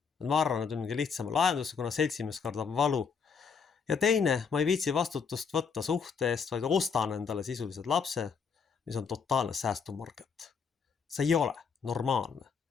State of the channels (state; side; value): quieter; right; 6.0 dB